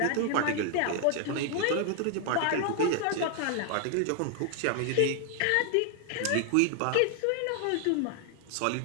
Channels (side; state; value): both; different; correlation 0.00